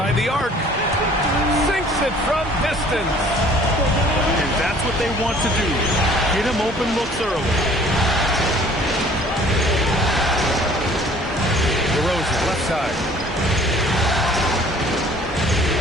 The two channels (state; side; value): normal; both; correlation 0.53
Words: the arc. Sinks it from distance. And that's what they want to do. Get him open looks early. DeRozan, left side.